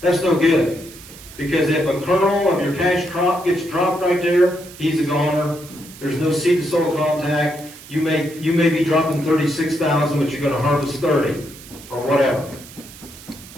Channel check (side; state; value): right; noise; hiss, 18 dB below the sound